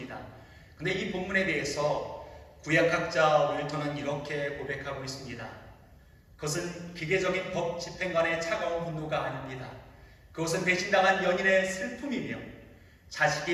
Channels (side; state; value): both; identical; correlation 1.00